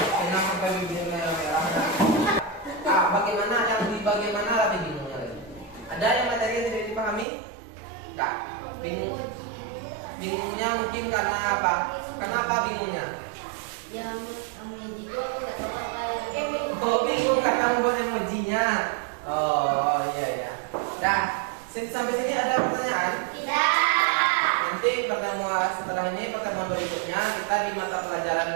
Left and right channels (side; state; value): left; drops out; at 7.2 s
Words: sampai bibir merah-merah. Bagaimana yang di bagaimana lagi bingungnya lagi? Ada yang materi yang tidak dipahami? Enggak. Bingungnya mungkin karena apa? Karena apa bingungnya? Yang emoji itu aku nggak tahu apa yang Oh, bingung karena membuat emojinya. Oh, iya. Nah, sampai sini ada pertanyaan? Nanti pertemuan berikutnya kita di mata